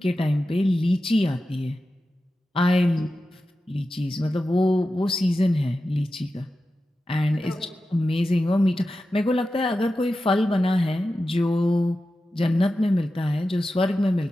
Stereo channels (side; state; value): both; normal; correlation 0.92